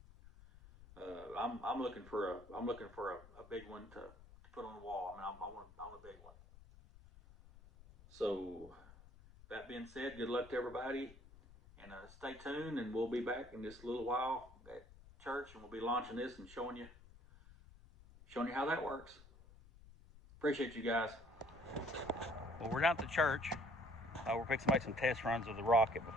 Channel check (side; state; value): left; noise; rumble, 21 dB below the sound